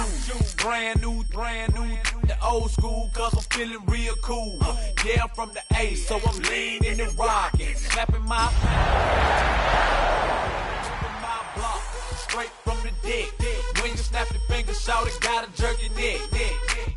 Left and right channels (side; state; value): both; identical; correlation 1.00